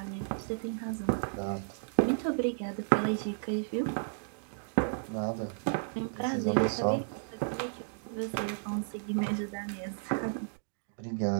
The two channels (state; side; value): silent; left; digital silence